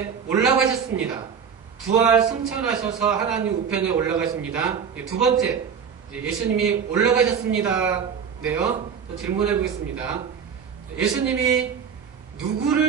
올라가셨습니다. 부활 승천하셔서 하나님 우편에 올라가십니다. 두 번째, 예수님이 올라가셨습니다. 네요. 질문해 보겠습니다. 예수님이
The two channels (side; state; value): left; quieter; 7.0 dB